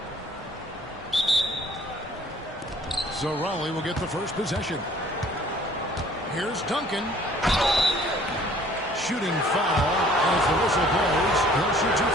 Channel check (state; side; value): normal; both; correlation 0.55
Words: So Raleigh will get the first possession. Here's Duncan. Shooting foul as the whistle blows. He'll shoot 2